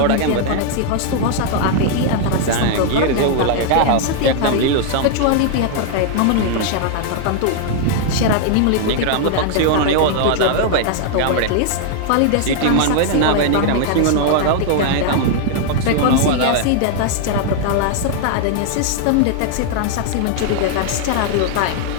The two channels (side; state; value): both; different; correlation 0.00